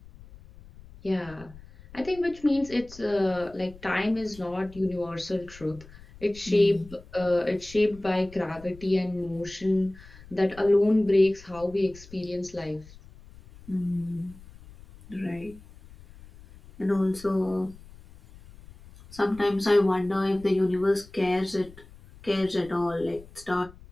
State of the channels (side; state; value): left; noise; rumble, 20 dB below the sound